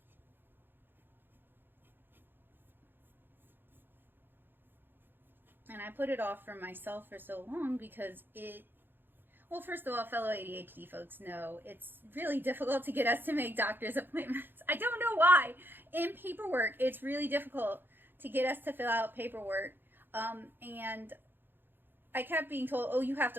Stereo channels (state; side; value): late; left; 0.098 ms